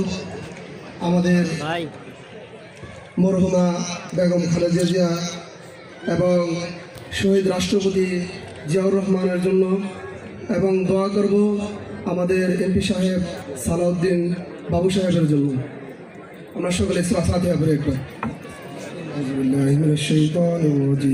আমাদের মরহুমা বেগম খালেদা জিয়া এবং শহীদ রাষ্ট্রপতি জিয়াউর রহমানের জন্য, এবং দোয়া করব আমাদের এমপি সাহেব সালাউদ্দিন বাবু সাহেবের জন্য। আমরা সকলে ফাতিহা পড়ে একবার। আউযু বিল্লাহি মিনাশ শাইতানির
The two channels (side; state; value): both; identical; correlation 1.00